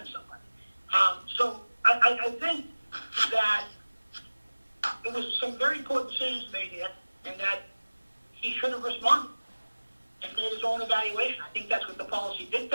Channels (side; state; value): both; inverted; correlation -1.00